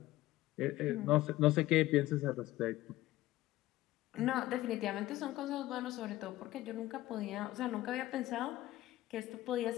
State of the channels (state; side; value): quieter; right; 16.4 dB